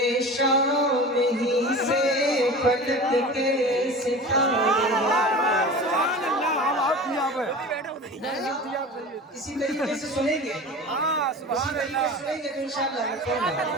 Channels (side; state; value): both; normal; correlation 0.35